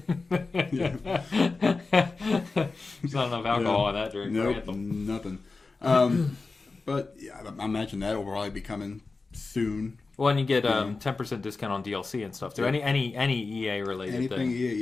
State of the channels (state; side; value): quieter; right; 3.9 dB